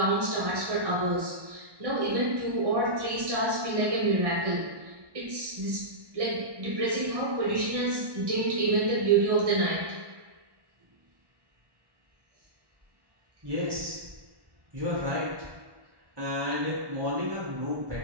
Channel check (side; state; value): left; late; 1.1 ms